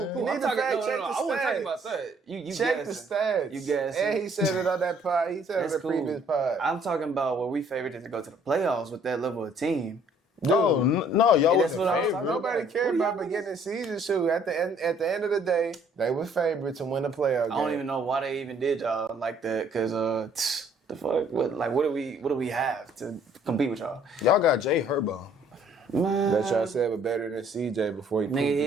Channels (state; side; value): normal; both; correlation 0.61